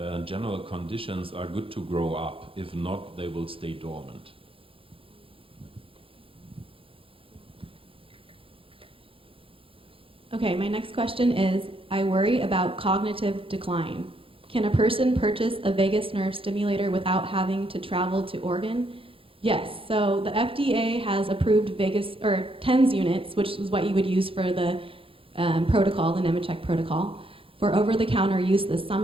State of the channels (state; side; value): late; left; 0.26 ms